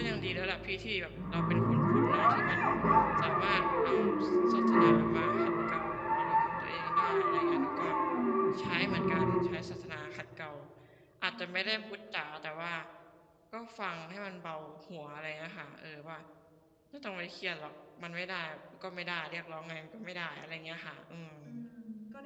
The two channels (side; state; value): both; identical; correlation 1.00